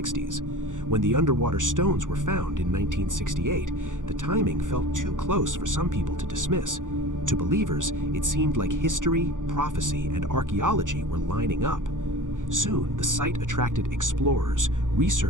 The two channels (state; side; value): late; left; 0.88 ms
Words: When the underwater stones were found in 1968, the timing felt too close for some people to dismiss. To believers, it seemed like history, prophecy, and archaeology were lining up. Soon, the site attracted explorers,